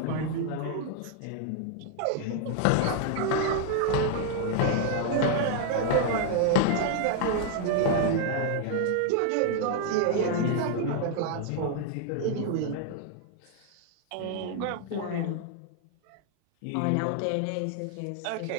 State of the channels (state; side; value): different; both; correlation 0.00